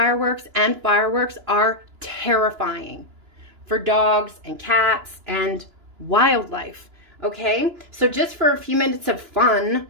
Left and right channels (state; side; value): late; left; 2.9 ms